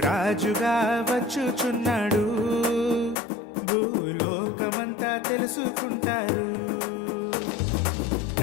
వచ్చుచున్నాడు, భూలోకమంతా తెలుసుకుంటారు.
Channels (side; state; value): right; drops out; at 3.2 s